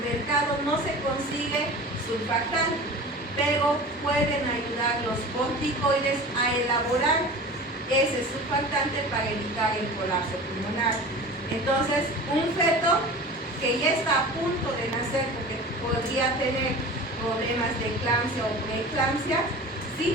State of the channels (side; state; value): both; normal; correlation 0.36